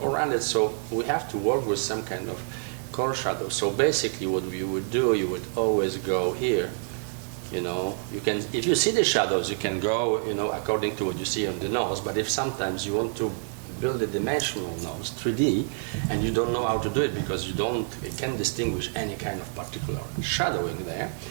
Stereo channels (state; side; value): silent; left; digital silence